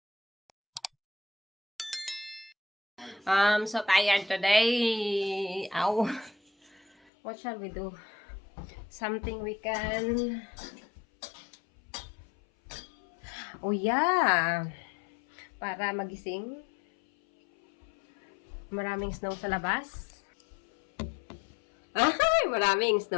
I'm so tired today. Ow. What shall we do? Something we can... Oh yeah! Para magising. Maraming snow sa labas. Ay, maraming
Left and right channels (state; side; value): drops out; right; at 6.9 s